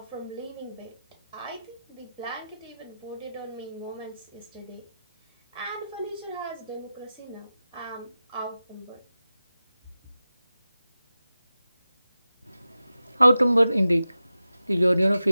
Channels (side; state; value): both; inverted; correlation -0.93